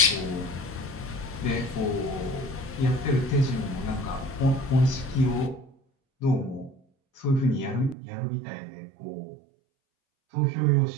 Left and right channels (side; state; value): left; drops out; at 8.0 s